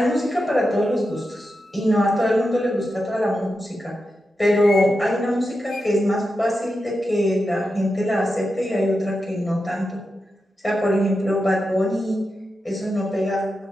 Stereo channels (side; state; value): both; normal; correlation 0.89